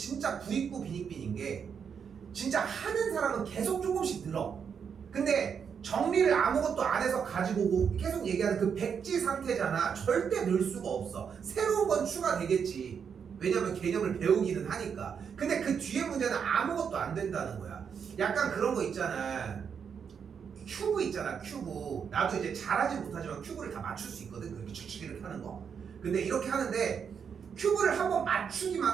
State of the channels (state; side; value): quieter; left; 7.0 dB